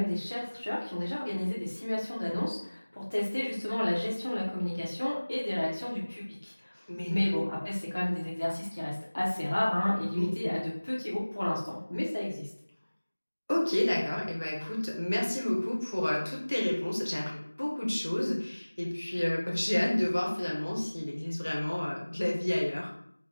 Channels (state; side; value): inverted; both; correlation -1.00